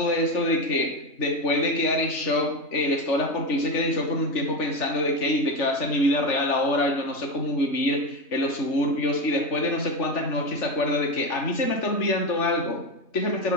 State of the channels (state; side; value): late; right; 3.4 ms